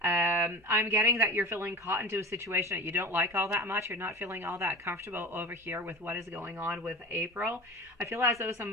getting that you're feeling caught into a situation that you don't like all that much. You're not feeling all that comfortable over here with what is going on with April. I feel as though some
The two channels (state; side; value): normal; both; correlation 0.34